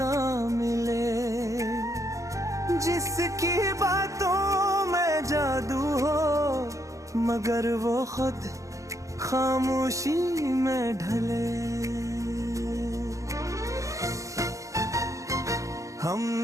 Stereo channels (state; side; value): late; left; 0.15 ms